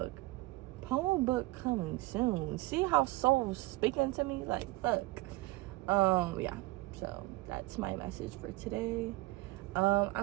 Poem book coming soon. See how soul's speaking to me? Like, fuck. Yeah, so that's my message for today.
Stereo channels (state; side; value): quieter; left; 20.4 dB